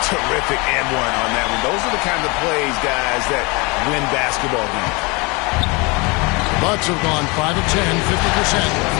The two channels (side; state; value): right; quieter; 27.6 dB